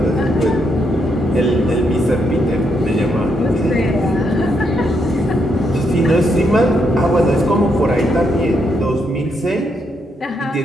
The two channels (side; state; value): both; normal; correlation 0.78